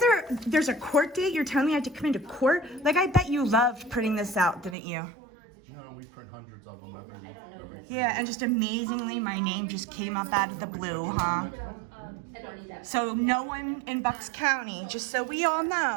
there's a court date? You're telling me I have to come into court? Like, I bet you loved printing this out, didn't you? No, we print hundreds of them every Yeah, and just amazingly, my name just came up out of the blue, huh? So no one in Bucks County, just so we all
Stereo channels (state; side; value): drops out; left; at 4.8 s